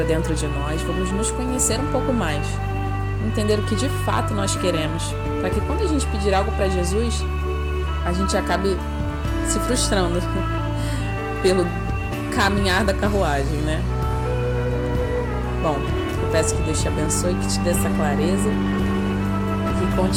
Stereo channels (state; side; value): identical; both; correlation 1.00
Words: dentro de nós, vamos nos conhecer um pouco mais, entender o que de fato nós queremos, para que quando a gente pedir algo para Jesus, a gente acabe se frustrando pelo caminhar da carruagem, né? Bom, eu peço que Deus te abençoe, que te dê essa clareza e que